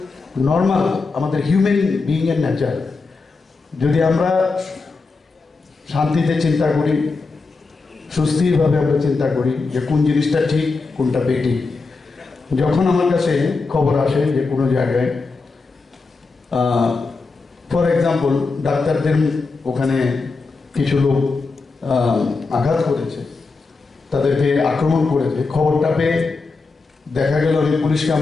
নর্মাল আমাদের হিউম্যান বিইংয়ের নেচার। যদি আমরা শান্তিতে চিন্তা করি, সুস্থিরভাবে আমরা চিন্তা করি যে কোন জিনিসটা ঠিক কোনটা বেঠিক। যখন আমার কাছে খবর আসে যে কোনো জায়গায় ফর এক্সাম্পল ডাক্তারদের ওখানে কিছু লোক আঘাত করেছে, তাদেরকে আক্রমণ করেছে, খবরটা পেয়ে দেখা গেল আমি পুলিশকে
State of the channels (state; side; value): quieter; right; 4.1 dB